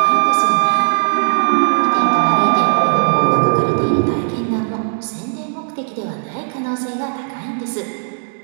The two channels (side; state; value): left; silent; digital silence